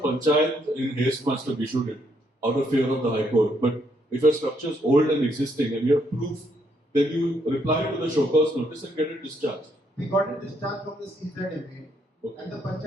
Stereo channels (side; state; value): both; normal; correlation 0.73